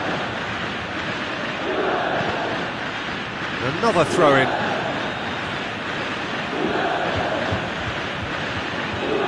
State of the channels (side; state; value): both; identical; correlation 1.00